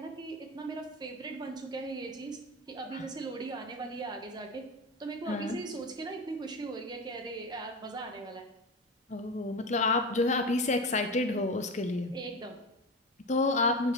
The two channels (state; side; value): normal; both; correlation 0.23